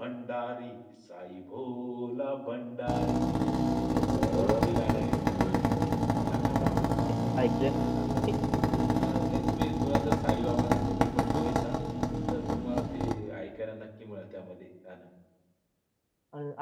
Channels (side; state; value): both; identical; correlation 1.00